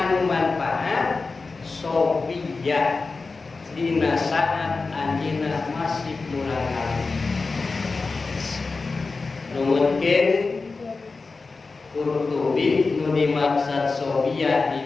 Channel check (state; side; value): quieter; right; 4.0 dB